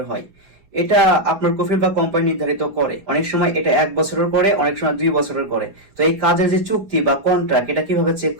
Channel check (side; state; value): left; late; 5.0 ms